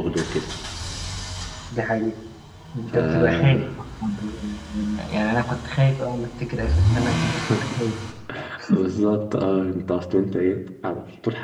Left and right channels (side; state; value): both; identical; correlation 1.00